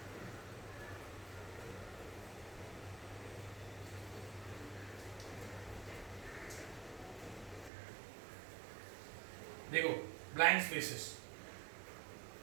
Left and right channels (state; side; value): drops out; left; at 7.7 s